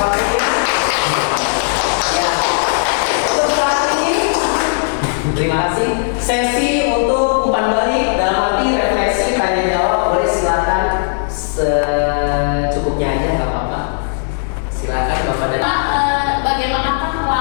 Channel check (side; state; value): right; silent; digital silence